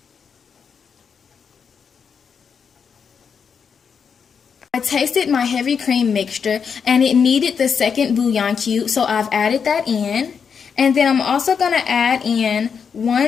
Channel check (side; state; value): right; quieter; 6.5 dB